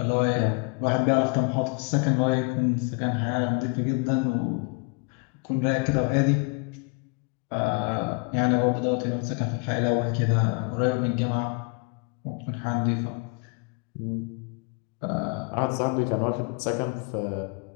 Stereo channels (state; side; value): quieter; right; 34.1 dB